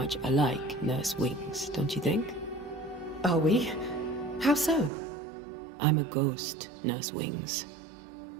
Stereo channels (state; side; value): drops out; left; at 4.9 s